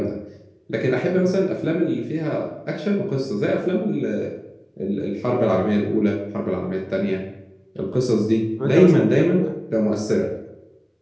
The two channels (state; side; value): identical; both; correlation 1.00